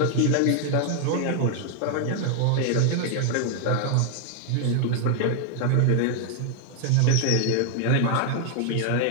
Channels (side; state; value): both; different; correlation 0.00